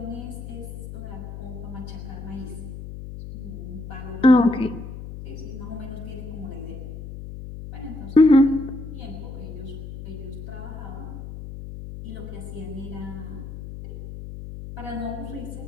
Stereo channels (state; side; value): noise; left; hum, 10 dB below the sound